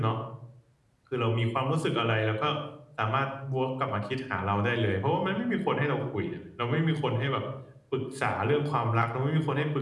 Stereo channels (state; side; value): identical; both; correlation 1.00